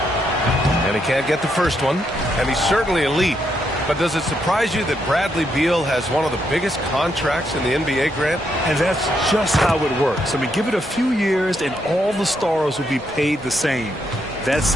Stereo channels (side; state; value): both; normal; correlation 0.78